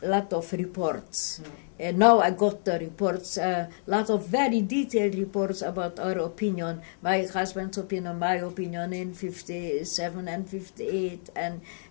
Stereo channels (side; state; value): right; silent; digital silence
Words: of reports. Now I got the reports, lot of very detailed reports about our opinion, my husband's opinion, my opinion in 57 and 58,